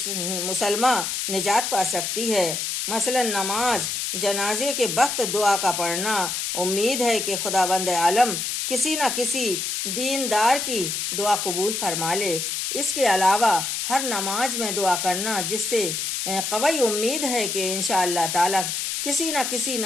مسلمہ نجات پا سکتی ہے۔ مثلا نماز، جنازے کے وقت دعا کا پڑھنا۔ امید ہے کہ خداوند عالم کسی نہ کسی دیندار کی دعا قبول فرما لے۔ اس کے علاوہ ہر نماز میں دعا کرنا، جس سے قوی امید ہے کہ انشاءاللہ تعالی کسی نہ کسی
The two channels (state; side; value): noise; left; hiss, 2 dB below the sound